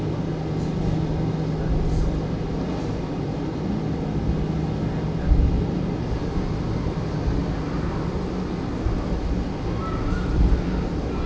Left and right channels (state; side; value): identical; both; correlation 1.00